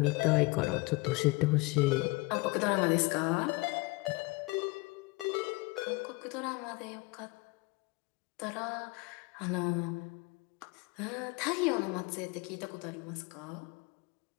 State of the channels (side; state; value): right; quieter; 25.0 dB